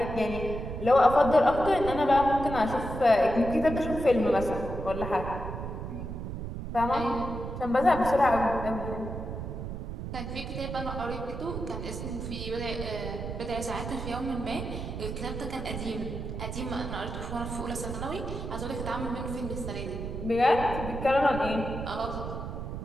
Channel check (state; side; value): noise; right; rumble, 6 dB below the sound